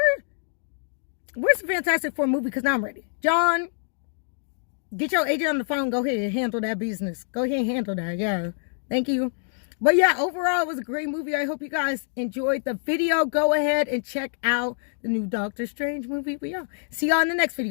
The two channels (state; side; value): silent; right; digital silence